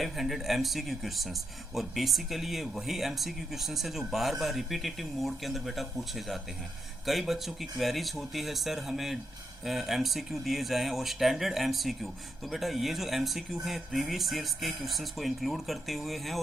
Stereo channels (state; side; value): normal; both; correlation 0.83